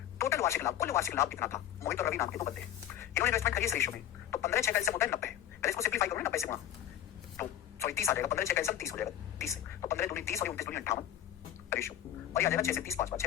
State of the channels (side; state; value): right; quieter; 11.6 dB